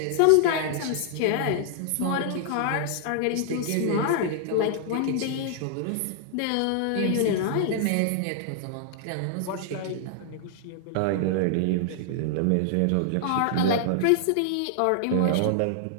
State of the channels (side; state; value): both; different; correlation -0.01